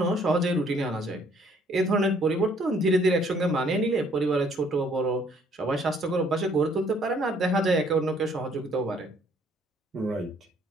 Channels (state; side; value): normal; both; correlation 0.63